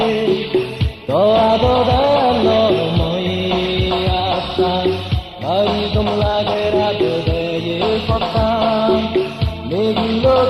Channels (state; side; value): identical; both; correlation 1.00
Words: দোয়াদোদালময় আসান বাড়ি কমলাগে রাত দেয়ে সত্তান মেঘগুলো